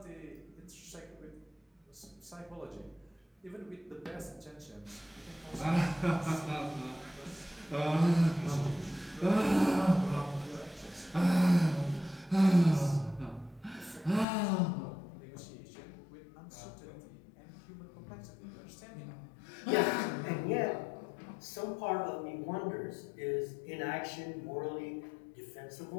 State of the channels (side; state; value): right; drops out; at 14.2 s